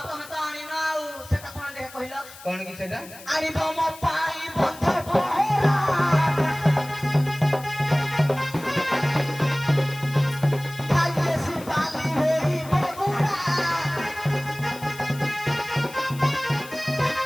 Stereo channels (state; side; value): noise; left; hiss, 18 dB below the sound